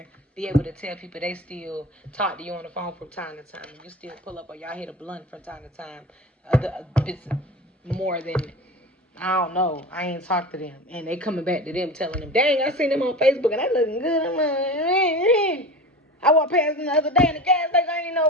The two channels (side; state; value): both; normal; correlation 0.32